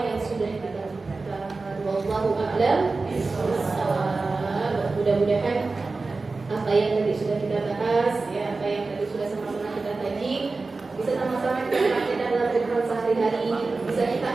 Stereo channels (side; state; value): left; quieter; 3.8 dB